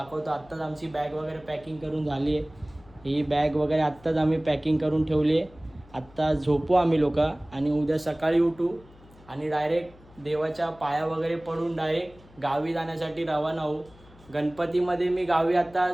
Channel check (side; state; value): left; noise; hum, 24 dB below the sound